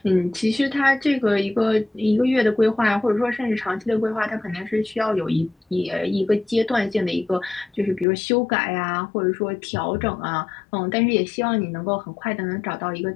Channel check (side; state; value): right; drops out; at 8.1 s